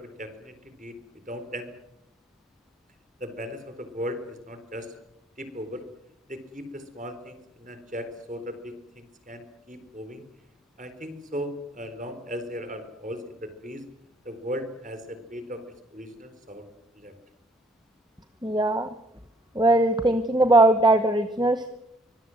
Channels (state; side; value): normal; both; correlation 0.62